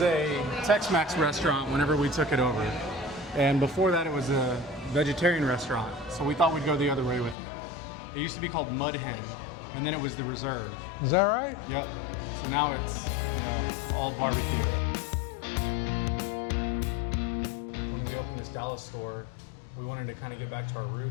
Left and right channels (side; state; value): right; drops out; at 7.4 s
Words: a Tex-Mex restaurant whenever we took it over. And before that, it was a vegetarian restaurant. So we thought we'd go the other way with it. It used to be called Mud Hen, and then it was the Reserve. Is that right? Yep. So now it's, all barbecue. When we opened this Dallas store, we wanted to kind of get back to our